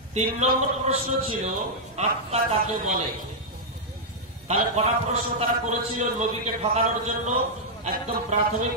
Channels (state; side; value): normal; both; correlation -0.06